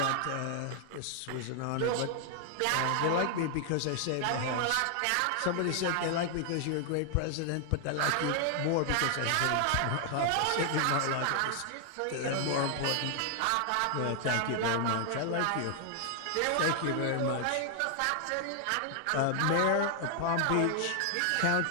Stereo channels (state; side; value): different; both; correlation 0.00